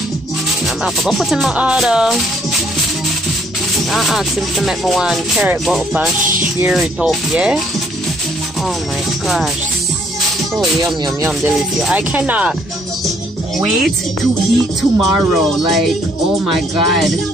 I'm gonna go put in my order. I asked him to make me one carrot butter and share it up, yeah? Oh my gosh. So yum, yum, yum, delicious. I cannot wait to eat tomorrow. Like, oh my god.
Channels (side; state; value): both; normal; correlation 0.65